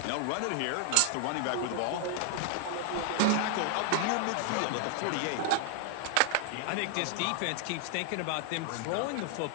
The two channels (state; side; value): different; both; correlation 0.00